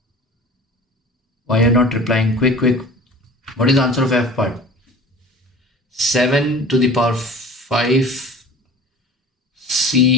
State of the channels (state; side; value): normal; both; correlation 0.41